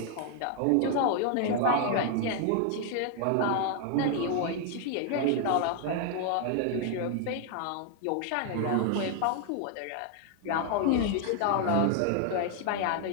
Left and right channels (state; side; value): different; both; correlation 0.00